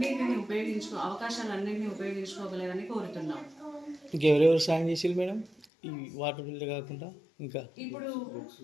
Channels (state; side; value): drops out; right; at 5.7 s